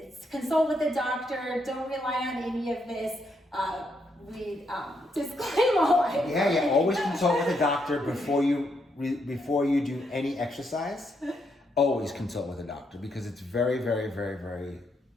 consult with a doctor, don't rely on any of this. We disclaim all. Yeah, always consult with a doctor before you do any exercise. Always consult with a doctor because it's very, very, very, very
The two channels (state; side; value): normal; both; correlation 0.77